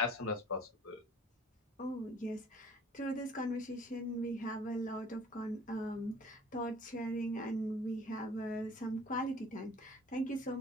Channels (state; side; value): normal; both; correlation 0.52